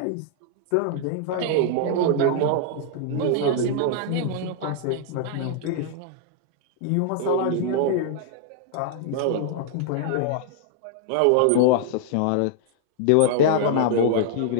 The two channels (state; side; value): different; both; correlation 0.00